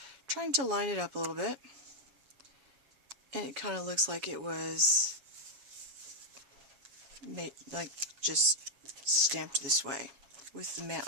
trying to line it up a little bit. And it kind of looks like it was made, like just stamped this way with the mat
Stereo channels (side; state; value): left; late; 7.3 ms